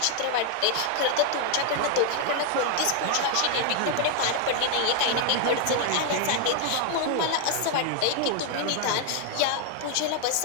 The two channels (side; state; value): both; different; correlation 0.00